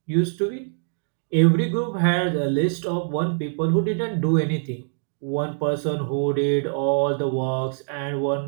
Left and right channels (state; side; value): silent; left; digital silence